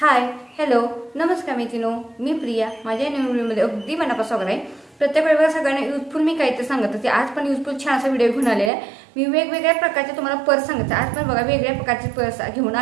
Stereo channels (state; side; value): drops out; left; at 8.7 s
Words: हाय हॅलो नमस्कार मैत्रिणो, मी प्रिया. माझ्या नवीन व्हिडिओमध्ये अगदी मनापासून स्वागत आहे. प्रत्येक वेळेला सगळ्यांना युजफुल मी काहीतरी सांगत होते. आज पण युजफुल छान असा व्हिडिओ घेऊन आलेला आहे. मी वेगवेगळ्या प्रकारचे तुम्हाला पर्स सांगते. आज पण बघा वेगवेगळ्या प्रकारचे पर्स घेऊन